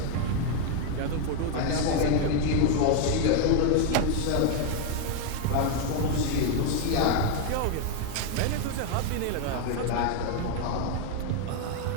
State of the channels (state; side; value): different; both; correlation 0.01